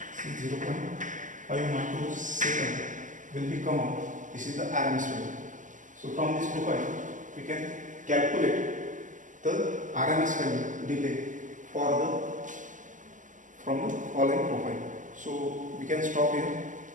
see 0.5 microsecond will be come out. This is the RMS value. So from this profile we can calculate the RMS value delay for the from the following profile. So we can stop here.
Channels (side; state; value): left; late; 0.37 ms